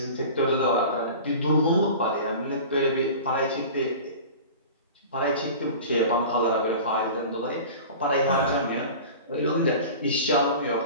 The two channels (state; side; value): inverted; both; correlation -0.37